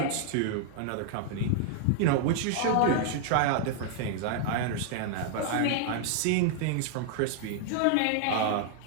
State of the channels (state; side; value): different; both; correlation 0.00